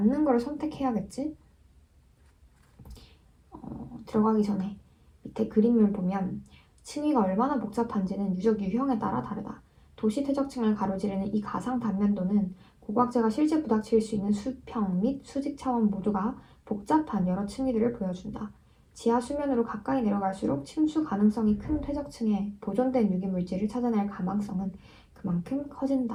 걸 선택해야겠지? 들어가기 전에 밑에 그림을 보면 층위가 얼마나 복잡한지는 유적 유형에 따라 다르다. 도시 퇴적층을 가로지르는 이 가상 단면도는 고고학자가 실제 부닥칠 수 있는 수평 및 수직 차원 모두가 복잡한 여러 층위들을 보여준다. 지하 수면으로 가까이 내려갈수록 침수 가능성이 큰 퇴적층에 보존된 유기물질을 찾아낼 가망성은 그만큼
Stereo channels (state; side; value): identical; both; correlation 1.00